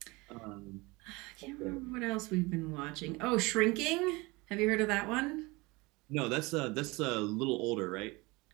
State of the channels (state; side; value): quieter; left; 24.1 dB